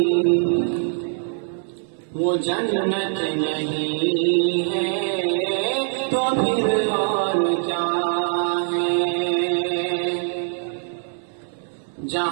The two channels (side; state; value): left; silent; 63 dB below the other